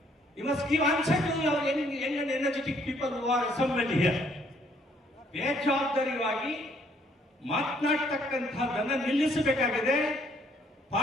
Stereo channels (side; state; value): both; normal; correlation 0.65